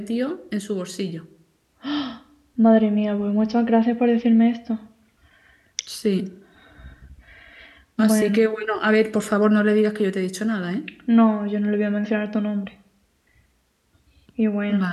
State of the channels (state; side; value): identical; both; correlation 1.00